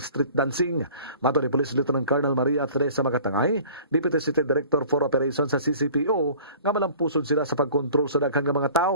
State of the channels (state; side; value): inverted; both; correlation -0.47